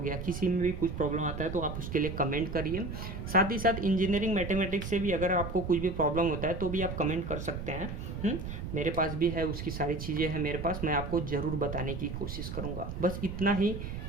किसी में भी कुछ प्रॉब्लम आता है तो आप उसके लिए कमेंट करिए। साथ ही साथ इंजीनियरिंग मैथमेटिक्स से भी अगर आपको कुछ भी प्रॉब्लम होता है तो भी आप कमेंट कर सकते हैं। मेरे पास भी है, उसकी सारी चीज़ें हैं मेरे पास, मैं आपको ज़रूर बताने की कोशिश करूँगा। बस इतना ही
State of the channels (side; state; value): right; noise; rumble, 6 dB below the sound